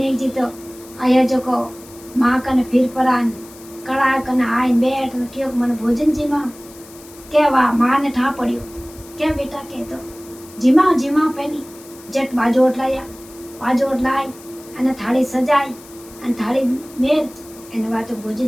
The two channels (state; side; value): noise; left; hiss, 21 dB below the sound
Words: जी तो आया जो को माँ कने फिर परान कड़ा कने आए बैठ ने क्यों मन भोजन जीमा के वा मां ने ठा पड़ियो के बेटा के तो जीमा पहली जट बाजोट लाई अने थाली सजाई अने थाली मेल अने वा तो